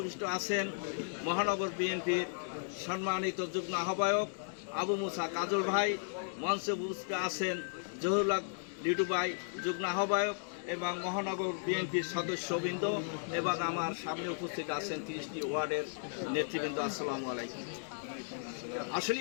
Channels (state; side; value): silent; right; digital silence